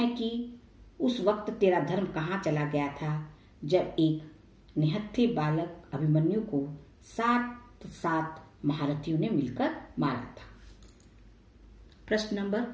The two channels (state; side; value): identical; both; correlation 1.00